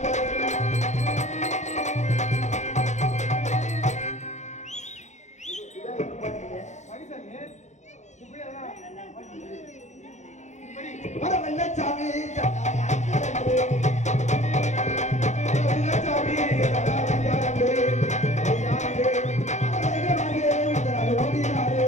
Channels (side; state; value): right; late; 0.34 ms